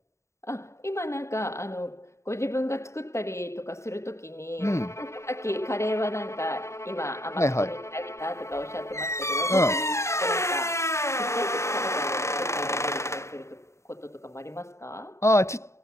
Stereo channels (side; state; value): right; late; 0.14 ms